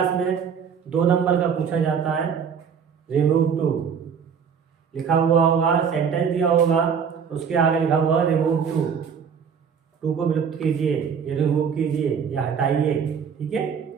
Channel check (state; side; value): quieter; left; 6.8 dB